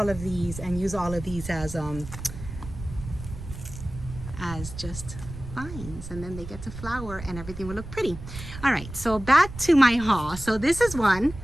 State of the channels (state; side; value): noise; right; rumble, 11 dB below the sound